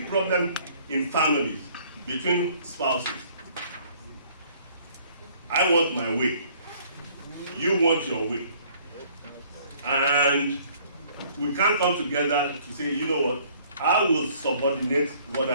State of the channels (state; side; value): inverted; both; correlation -0.58